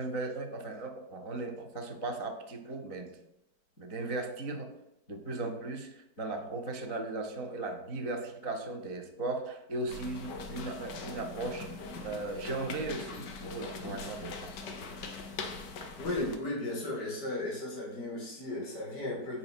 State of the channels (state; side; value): late; right; 4.6 ms